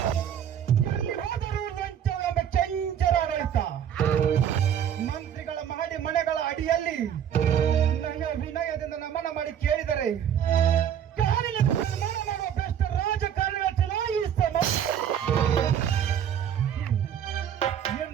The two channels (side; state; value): left; quieter; 9.2 dB